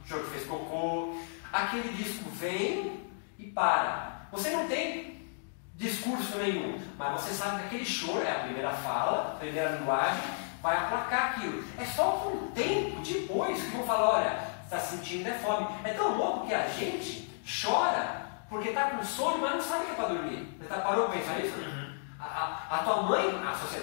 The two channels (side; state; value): right; silent; digital silence